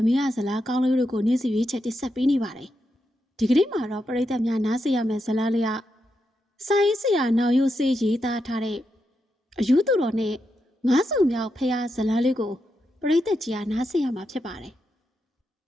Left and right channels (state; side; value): normal; both; correlation 0.85